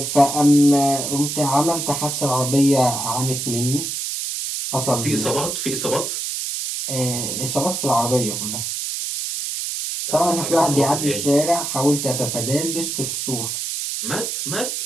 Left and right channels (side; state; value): right; noise; hiss, 3 dB below the sound